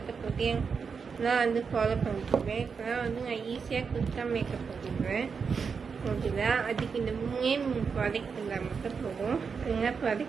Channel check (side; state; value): left; quieter; 5.7 dB